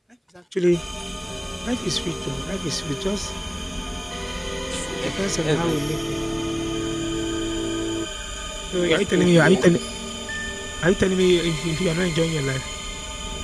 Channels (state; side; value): identical; both; correlation 1.00